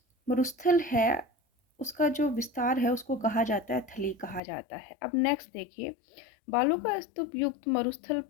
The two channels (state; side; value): drops out; right; at 4.4 s